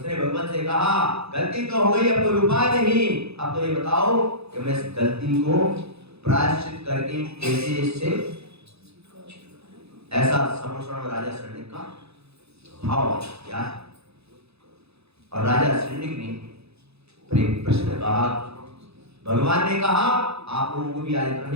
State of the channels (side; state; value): left; late; 0.79 ms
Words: भगवान से कहा गलती तो हो गई, अब कोई उपाय नहीं, अब तो ये बताओ कि मैं इस गलती को प्रायश्चित करके कैसे इससे, ऐसा समोषण राजा शरण्य का भाव क्या है। और राजा शरण्य ने प्रश्न कहा, भगवान ने कहा आप लोगों को भी आज इतना